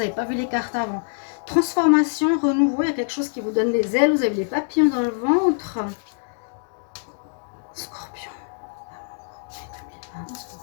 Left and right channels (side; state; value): right; silent; digital silence